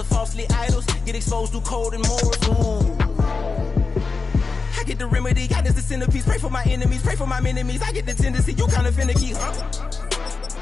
falsely idols. Get exposed through cold and morals. Ooh. I get the remedy. God is the centerpiece. Pray for my enemies. Pray for my enemies. I get the tendency. You kind of finicky, huh?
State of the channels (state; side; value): quieter; right; 4.4 dB